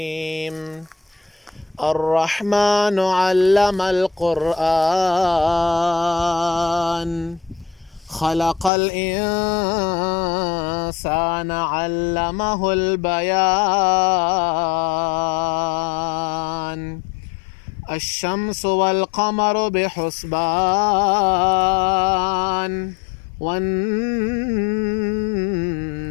الرحمن علم القرآن، خلق الإنسان علمه البيان. الشمس والقمر بحسبان، والنجم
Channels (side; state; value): right; drops out; at 8.7 s